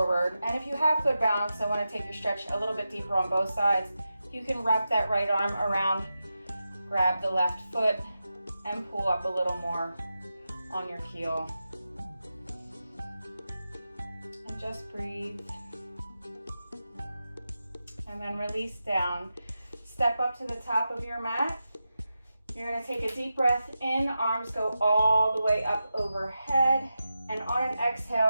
And if you have good balance, I want to take your stretch a little bit deeper on both sides. You can wrap that right arm around, grab the left foot, and pull up a little more on your heel. And just breathe. And then release down. Step up to the top of your mat. You're going to take a deep breath in, arms go all the way up overhead, and on an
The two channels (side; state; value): both; inverted; correlation -0.91